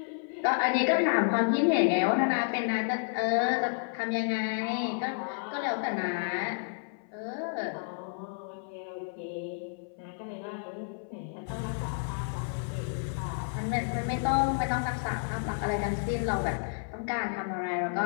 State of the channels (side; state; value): right; silent; 57 dB below the other